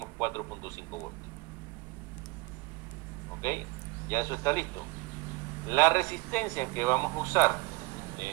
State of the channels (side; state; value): left; quieter; 23.4 dB